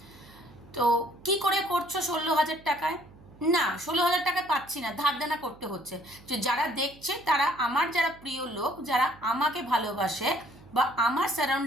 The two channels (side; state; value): right; noise; hum, 23 dB below the sound